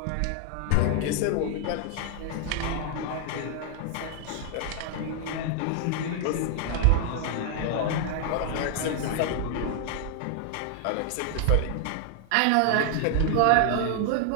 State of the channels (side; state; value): both; different; correlation 0.00